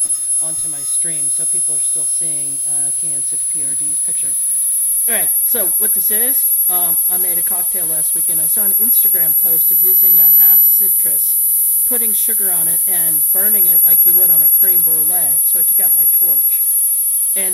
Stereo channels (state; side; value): noise; left; hiss, 23 dB below the sound